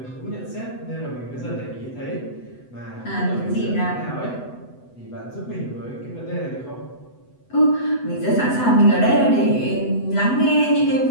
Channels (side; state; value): right; late; 8.0 ms